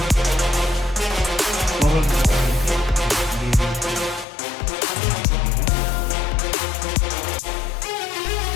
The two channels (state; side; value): drops out; right; at 4.2 s